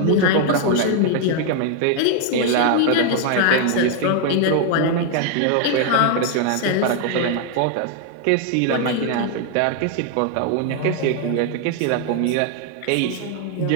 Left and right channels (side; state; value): both; different; correlation 0.00